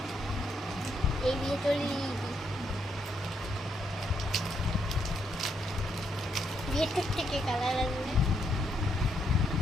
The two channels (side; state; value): both; normal; correlation 0.77